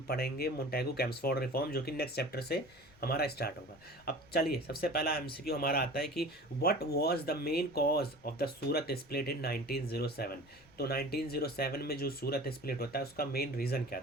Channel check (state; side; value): noise; left; rumble, 28 dB below the sound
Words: पढ़ेंगे मोंटेगू चेम्सफोर्ड रिफॉर्म, जो कि नेक्स्ट चैप्टर से हमारा स्टार्ट होगा। अब चलिए सबसे पहला एमसीक्यू हमारा आता है कि what was the main cause of the Surat split in 1907। तो 1907 में जो सूरत स्प्लिट होता है उसका मेन रीज़न क्या